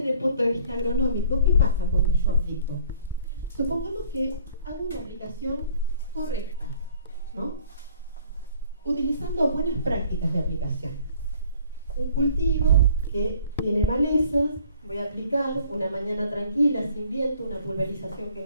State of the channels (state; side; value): inverted; both; correlation -0.56